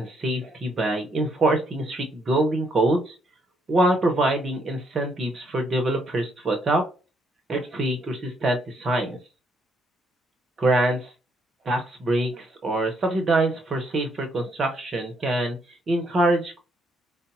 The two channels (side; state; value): both; normal; correlation 0.72